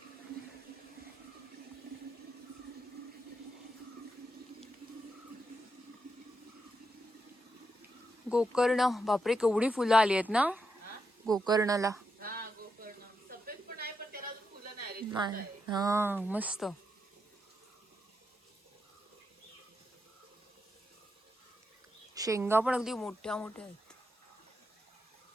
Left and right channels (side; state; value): both; normal; correlation 0.84